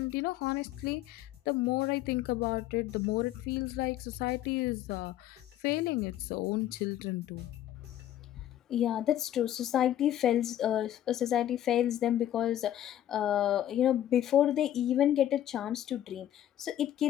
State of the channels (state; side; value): quieter; right; 12.1 dB